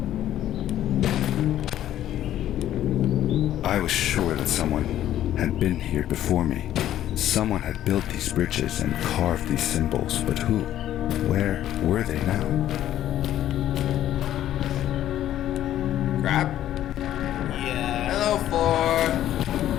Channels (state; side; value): quieter; right; 12.2 dB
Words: I was sure that someone had been here before me. Someone had built these bridges and carved these symbols, but who? Where were they now? Crap. Yeah. Hello,